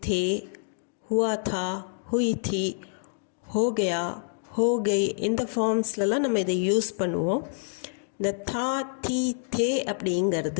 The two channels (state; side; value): silent; right; digital silence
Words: थे, हुआ था, हुई थी, हो गया, हो गई. இந்த ஃபார்ம்ஸ்லலாம் நம்ம இதை யூஸ் பண்ணுவோம். இந்த தா, தி, தே